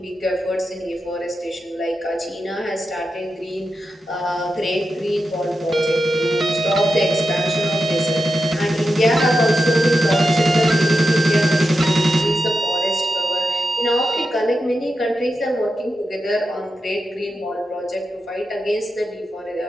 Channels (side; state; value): both; normal; correlation 0.89